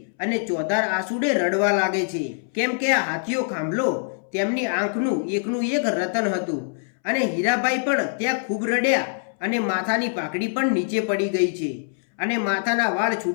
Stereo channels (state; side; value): silent; right; 63 dB below the other